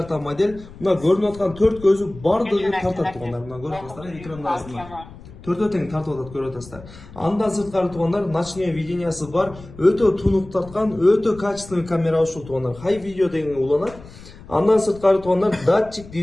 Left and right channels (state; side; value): noise; left; rumble, 18 dB below the sound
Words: модель. Мына көрүнүп аткан 4 көзү бардыгы тартат туугандар. Мына көрүп атасыздар, экрандагысында. Төртөө тең тартып атат, көрүп атасыздар. Андан сырткары туугандар, ночное видениясы бар, өтө тунук тарткан, өтө качественный камера ушул туугандар. High video деген уланат. Андан сырткары туугандар, датчик